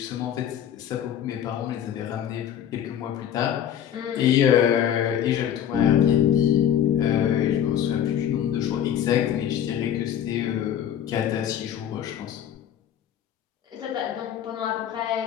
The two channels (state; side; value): quieter; right; 9.9 dB